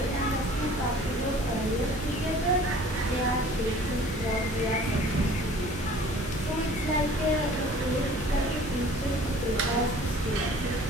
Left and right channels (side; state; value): both; normal; correlation 0.49